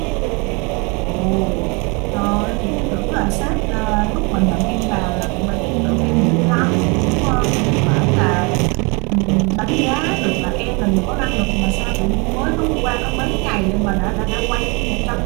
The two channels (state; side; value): quieter; left; 30.1 dB